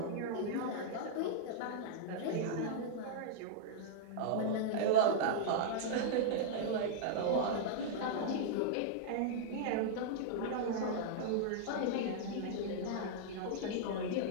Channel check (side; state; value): both; different; correlation -0.02